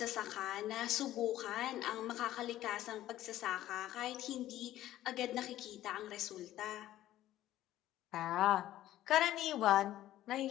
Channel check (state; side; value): quieter; right; 13.9 dB